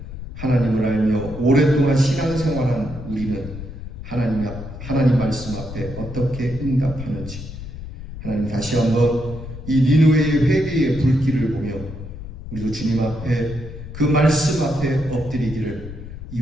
하나님을 알며 오랫동안 신앙생활한 우리는 하나님 말씀 앞에 어떻게 응답하는지 하나님 다시 한번 이 니느웨의 회개의 불길을 보며 우리도 주님 앞에 그 말씀 앞에 엎드리기를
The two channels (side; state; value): left; noise; rumble, 11 dB below the sound